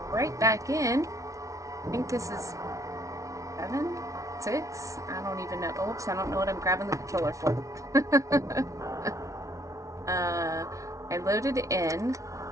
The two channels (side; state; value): left; late; 0.15 ms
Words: right back in. I think this is 7, 6. I don't even know. Oops, I don't know what I'm grabbing the controller for. I loaded in.